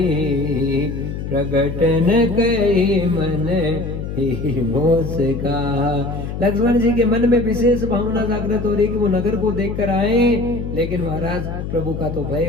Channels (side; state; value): left; noise; hum, 6 dB below the sound